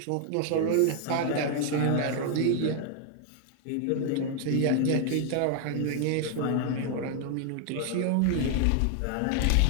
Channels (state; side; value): different; both; correlation 0.00